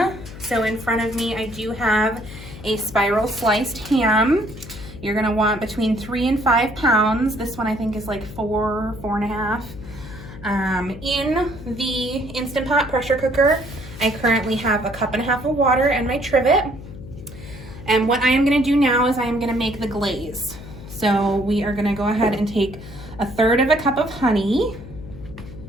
So in front of me I do have a spiral sliced ham. You're gonna want between 3 and 5 pounds. This one I think is like 4.5. In the Instant Pot pressure cooker, I currently have a 1.5 cups of water and my trivet. And what I am gonna do now is I am gonna make the glaze. So we are gonna go ahead and take 1/3 cup of honey.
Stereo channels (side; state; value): left; noise; hum, 14 dB below the sound